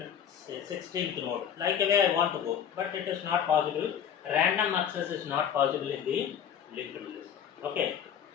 16th node. Like the way I want to go, but it is not possible. Random access is not possible in the linked list. Okay.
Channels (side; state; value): right; quieter; 8.6 dB